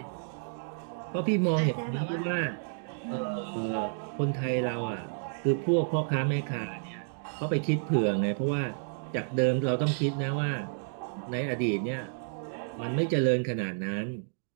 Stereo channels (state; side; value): silent; left; digital silence